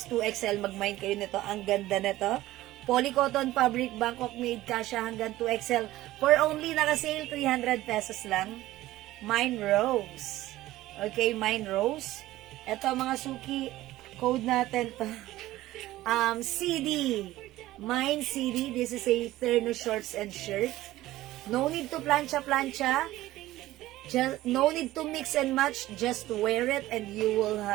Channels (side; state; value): left; quieter; 16.1 dB